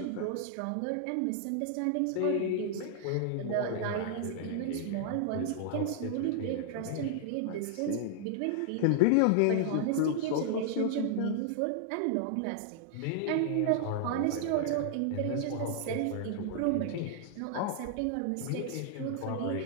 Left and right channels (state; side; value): different; both; correlation -0.01